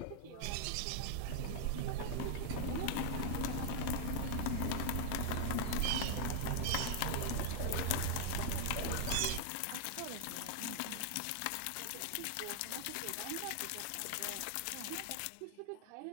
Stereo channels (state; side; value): different; both; correlation 0.00